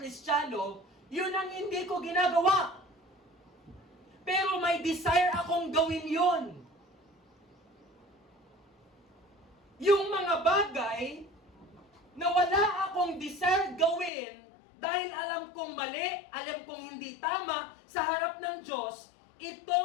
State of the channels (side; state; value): right; drops out; at 14.1 s